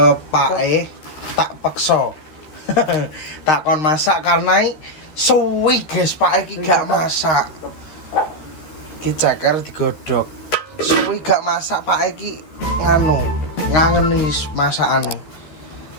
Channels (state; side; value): late; right; 13 ms